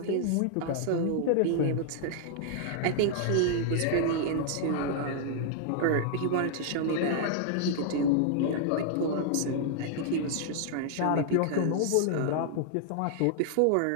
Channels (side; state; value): both; different; correlation 0.00